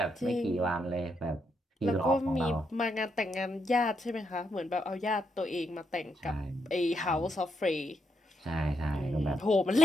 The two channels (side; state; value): both; normal; correlation 0.79